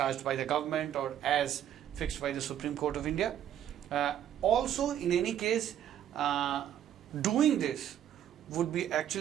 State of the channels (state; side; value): quieter; left; 10.6 dB